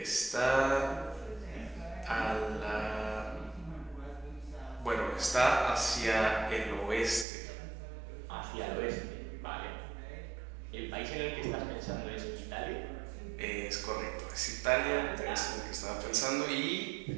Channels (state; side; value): drops out; left; at 7.2 s